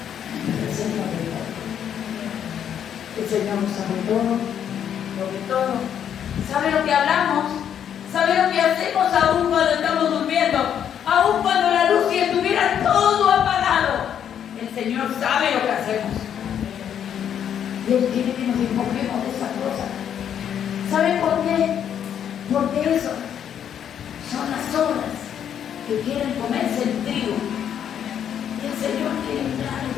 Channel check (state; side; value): quieter; right; 9.1 dB